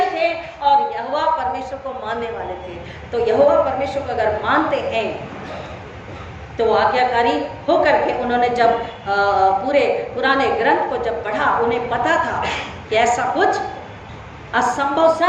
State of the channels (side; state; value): both; identical; correlation 1.00